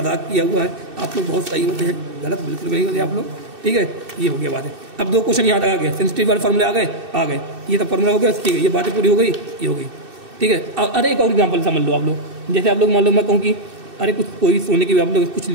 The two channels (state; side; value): late; left; 2.6 ms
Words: किया हुआ है। आप लोग बहुत सही होते हैं, गलत बिल्कुल नहीं होते आप लोग, ठीक है। ये हो गया बातें। अब दो क्वेश्चन यहाँ तक आ गए, सेंसिटिव वाले फार्मूले आ गए, ये सब फार्मूला हो गया, ठीक है। ये बातें पूरी हो गई, ये हो गई, ठीक है। अरे एक और एग्जाम्पल समझ लो आप लोग, जैसे आप लोग मान लो मैं कहूँ कि अरे कुछ कोई सोने की आप लोग कुछ